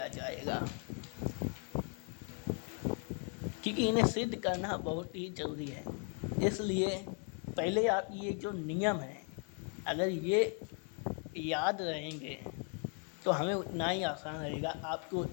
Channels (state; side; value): quieter; right; 40.0 dB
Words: जाएगा, क्योंकि इन्हें सिद्ध करना बहुत ही ज़रूरी है। इसलिए पहले आप ये जो नियम है अगर ये याद रहेंगे तो हमें उतना ही आसान रहेगा, आपको